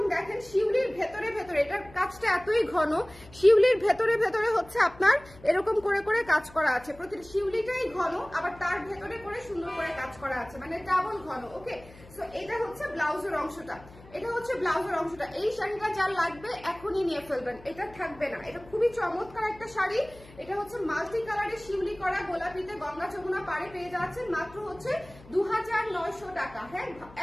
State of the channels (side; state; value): left; noise; hum, 21 dB below the sound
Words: দেখেন শিউলির ভেতরে ভেতরে, এটার কাজটা এতই ঘন, শিউলির ভেতরে ভেতরে হচ্ছে আপনার এরকম করে করে কাজ করা আছে। প্রতিটা শিউলিটাই ঘন, আবার তার ভেতরে করে সুন্দর করে কাজ করা আছে, মানে ডাবল ঘন। ওকে, সো এটা হচ্ছে ব্লাউজের অংশটা, এটা হচ্ছে ব্লাউজের অংশটা। এই শাড়িটা যার লাগবে এখনই নিয়ে ফেলবেন, এটা থাকবে না। এটা খুবই চমৎকার একটা শাড়ি। এটা হচ্ছে মাল্টি কালারের শিউলি করা গোলাপিতে গঙ্গা যমুনা পাড়ে পেয়ে যাচ্ছেন মাত্র হচ্ছে 2900 টাকা। হ্যাঁ,